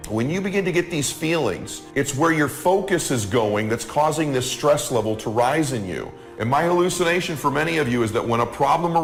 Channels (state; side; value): identical; both; correlation 1.00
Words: When you begin to get these feelings, it's where your focus is going that's causing this stress level to rise in you. And my hallucination for many of you is that when a problem